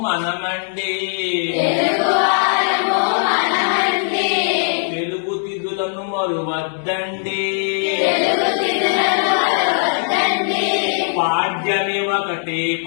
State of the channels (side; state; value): right; silent; digital silence